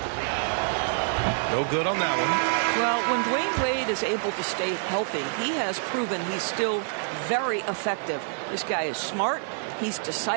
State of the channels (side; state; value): left; silent; 57 dB below the other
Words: No good on that one. Well, when Dwayne Wade is able to stay healthy, he has proven he's still very effective. This guy is smart, he's